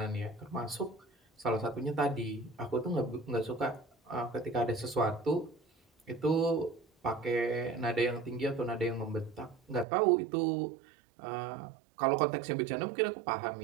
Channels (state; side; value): drops out; left; at 9.9 s